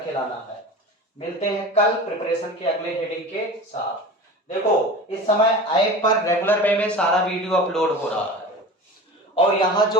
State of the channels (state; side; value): normal; both; correlation 0.34